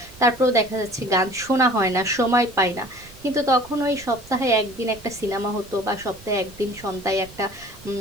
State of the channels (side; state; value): right; noise; rumble, 21 dB below the sound